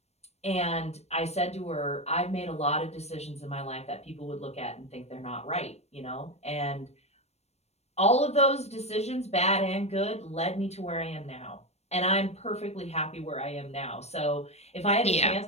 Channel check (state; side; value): late; right; 0.31 ms